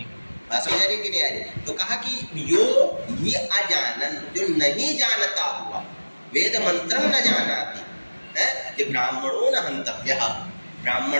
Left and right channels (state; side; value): inverted; both; correlation -1.00